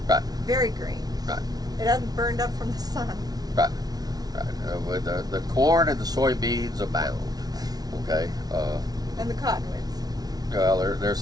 Right. Very green. Right. It hasn't burned up from the sun. Right. With the corn and the soybeans abound. Okay. And the cottonwoods. Well,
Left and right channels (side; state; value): left; late; 0.19 ms